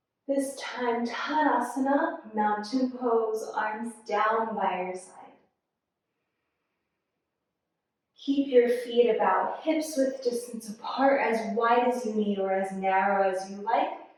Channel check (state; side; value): identical; both; correlation 1.00